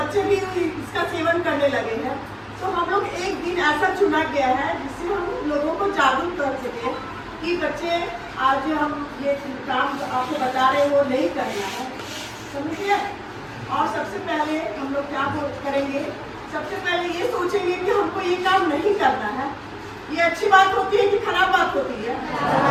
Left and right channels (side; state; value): both; identical; correlation 1.00